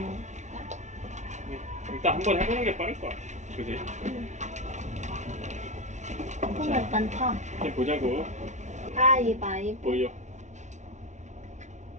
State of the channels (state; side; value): late; left; 0.34 ms